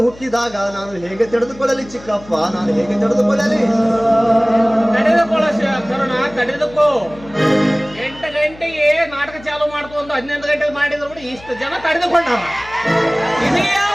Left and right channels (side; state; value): left; noise; hum, 20 dB below the sound